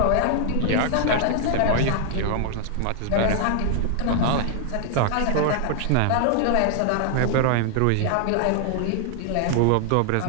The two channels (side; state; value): both; different; correlation 0.00